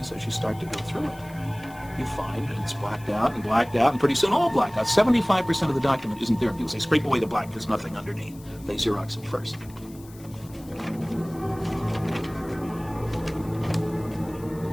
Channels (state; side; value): noise; left; hiss, 23 dB below the sound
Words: is, as you start to go through it, you find that it's blacked out, and pretty soon all blacked out. 75% of the document isn't there. People say, scrape away the black, there's nothing underneath. They Xerox it first.